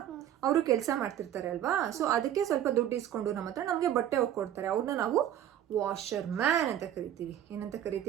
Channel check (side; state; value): left; quieter; 10.9 dB